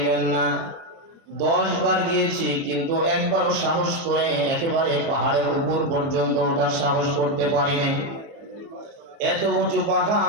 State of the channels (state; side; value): late; left; 30 ms